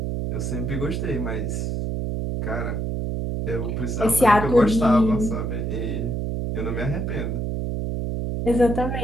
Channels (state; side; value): noise; right; hum, 2 dB below the sound